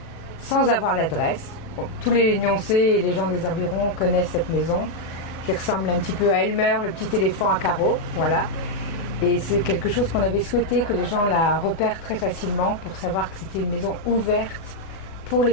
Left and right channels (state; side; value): late; right; 37 ms